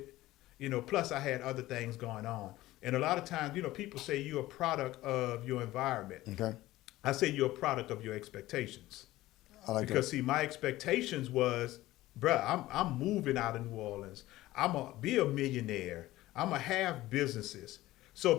Plus I had other things going on. And a lot of times, people say you're a product of your environment. Okay. I say you're a product of your expectations. I like Because see, my expectations was, bruh, I'm moving out of New Orleans. I'm gonna be a millionaire. I'm gonna have businesses. So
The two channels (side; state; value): right; quieter; 16.7 dB